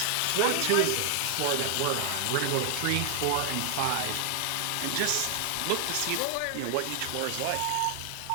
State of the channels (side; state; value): both; different; correlation 0.00